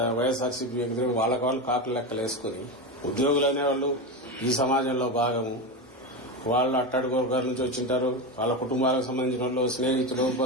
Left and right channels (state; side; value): normal; both; correlation 0.17